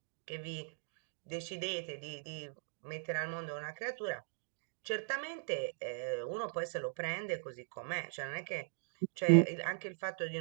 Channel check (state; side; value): silent; left; digital silence